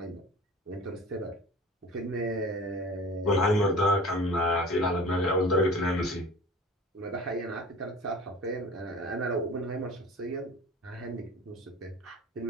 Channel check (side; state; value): both; normal; correlation 0.40